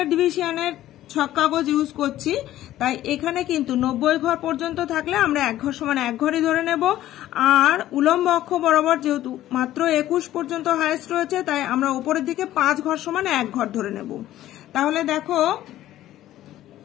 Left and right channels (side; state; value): right; quieter; 13.7 dB